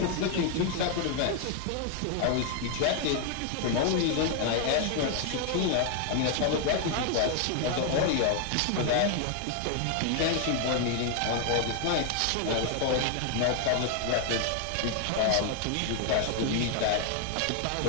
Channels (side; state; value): both; different; correlation 0.00